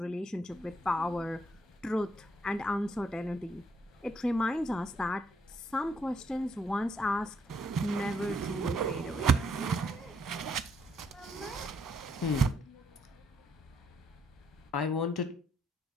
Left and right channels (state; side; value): normal; both; correlation 0.72